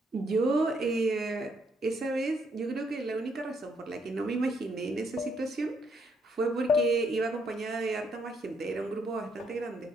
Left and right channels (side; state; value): both; normal; correlation 0.72